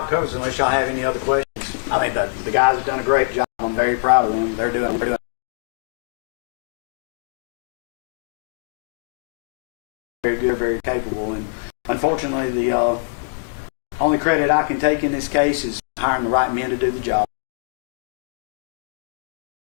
covers it, unless y'all have any other questions. I mean, the guys have done a great job. I'm very proud of them. They're doing very good, very capable. And unfortunately, the only credit I can take in this case is hiring the right men to do the job.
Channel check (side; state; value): right; silent; digital silence